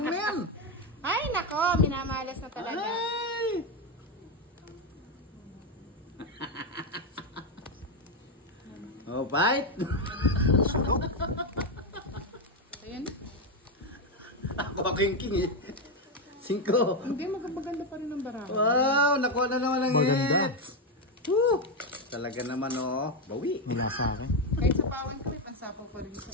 na yan? Ay, nako. Minamalas na talaga. Ay! Oh, bite! Ayan. Ako king eh. 5. Hindi, maganda pa rin ang baraha. Wow! Nakuha na naman ang Maganda. hits! Woo! Talaga naman oh. Bawi. Wala sa akin. Kahit sa pawan ko, may pansapaw pa rin sa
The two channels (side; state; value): both; normal; correlation 0.07